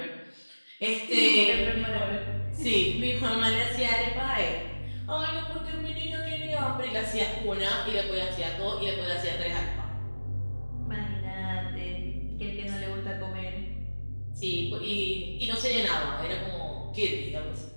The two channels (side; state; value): both; inverted; correlation -1.00